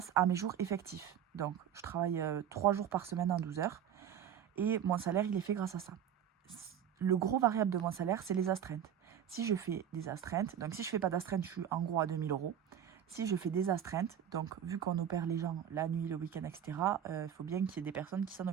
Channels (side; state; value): left; quieter; 9.4 dB